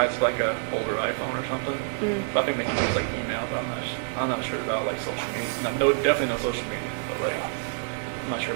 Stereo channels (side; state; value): left; silent; 56 dB below the other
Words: of like a older iPhone or something. Mm. But I think they can use like email, but I'm not sure about like social media. No, definitely no social media, but like I'm not sure